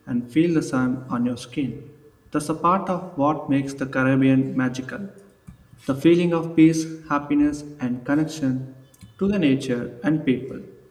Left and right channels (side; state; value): both; identical; correlation 1.00